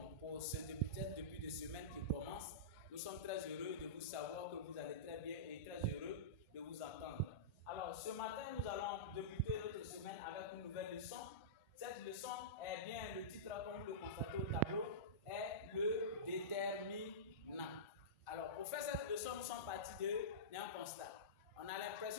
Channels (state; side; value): normal; both; correlation -0.19